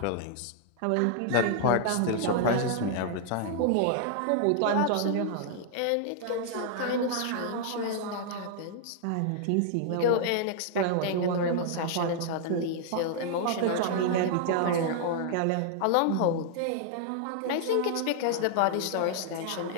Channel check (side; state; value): both; different; correlation -0.01